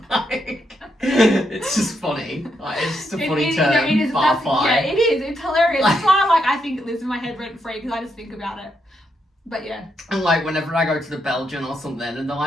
Like, it's just funny. Like, it's just a funny term. It is. Barfly. Yeah, it is. It's hilarious. That's why like I think it lives in my head rent free because I just think about it. But yeah. And like whenever I go to the Belgian or something and they're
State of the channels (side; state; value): both; normal; correlation 0.80